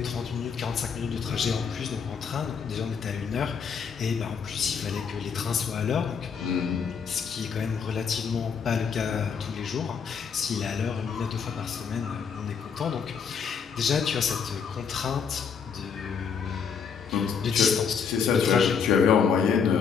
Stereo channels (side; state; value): right; quieter; 6.5 dB